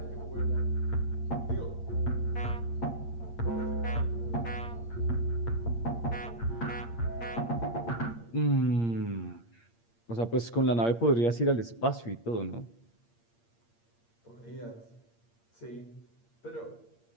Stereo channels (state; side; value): late; right; 8.6 ms